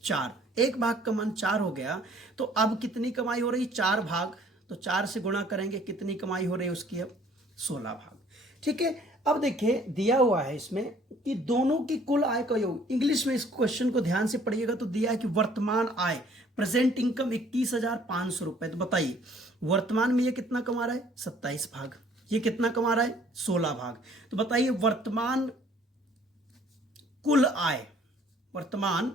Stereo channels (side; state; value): both; normal; correlation 0.58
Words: 4। 1 भाग का मान 4 हो गया, तो अब कितनी कमाई हो रही, 4 भाग, तो 4 से गुणा करेंगे, कितनी कमाई हो रही है उसकी, अब 16 भाग। ठीक है, अब देखिए दिया हुआ है इसमें कि दोनों की कुल आय का योग। इंग्लिश में इस क्वेश्चन को ध्यान से पढ़िएगा, तो दिया है कि वर्तमान आय, प्रेजेंट इनकम 21,500 रुपए। तो बताइए वर्तमान में ये कितना कमा रहा है, 27 भाग, ये कितना कमा रहा है, 16 भाग। तो बताइए वर्तमान कुल आय, वर्तमान